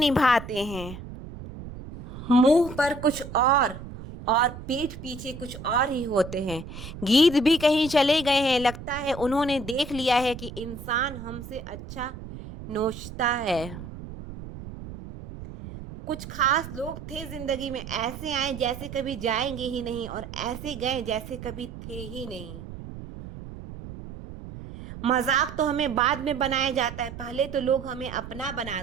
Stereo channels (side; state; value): right; noise; rumble, 12 dB below the sound